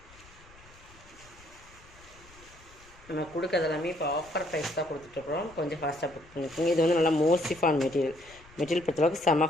நம்ம கொடுக்கறது எல்லாமே இப்போ ஆஃபர் ப்ரைஸ் தான் கொடுத்துட்ருக்குறோம். கொஞ்சம் ஃபாஸ்ட்டாக புக் பண்ணிக்கோங்க. இது வந்து நல்லா மோசிஃபான் மெட்டீரியல் பொறுத்தளவுக்கு செம்ம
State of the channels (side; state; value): left; noise; rumble, 24 dB below the sound